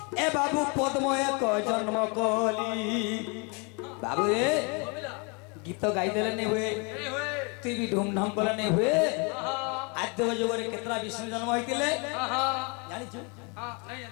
ए बाबू पद्म एक जन्म कली बाबू रे गीत गाई देले नहीं हुए तू भी धूमधाम कले नहीं हुए आद्य जुग रे केतरा विष्णु जन्म होइतिले जानि छु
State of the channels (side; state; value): right; quieter; 32.7 dB